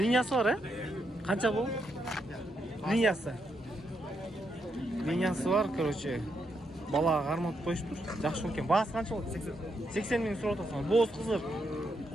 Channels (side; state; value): both; normal; correlation 0.80